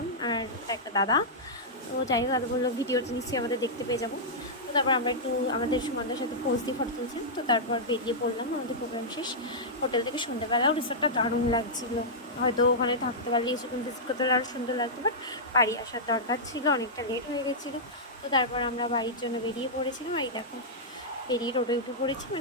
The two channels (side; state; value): both; normal; correlation -0.10